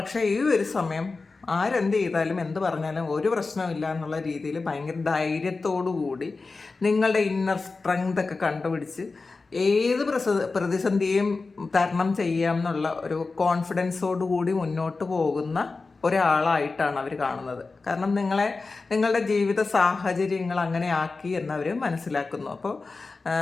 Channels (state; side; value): quieter; right; 3.9 dB